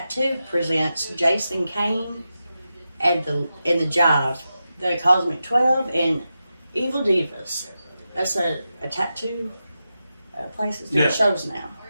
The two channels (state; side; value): inverted; both; correlation -0.90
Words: presents Jason Kane and the Jive, the Cosmic 12, and Evil Divas. That's a tattoo place that's doing Yeah. shows now.